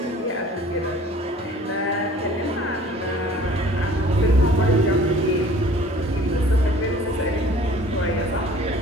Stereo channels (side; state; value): both; normal; correlation 0.50